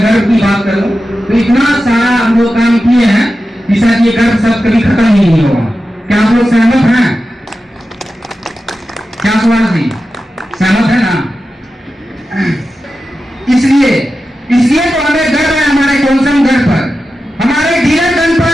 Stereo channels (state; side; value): normal; both; correlation 0.92